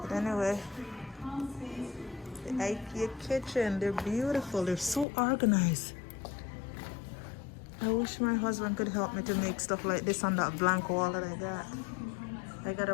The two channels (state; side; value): drops out; right; at 5.1 s